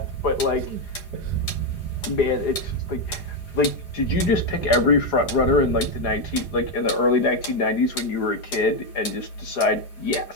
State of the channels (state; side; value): late; right; 4.9 ms